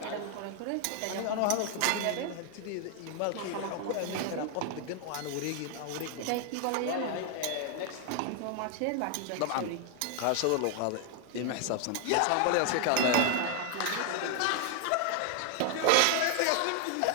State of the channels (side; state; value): both; different; correlation 0.00